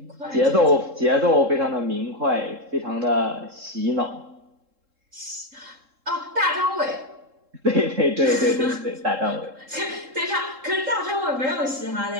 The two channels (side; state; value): left; late; 3.7 ms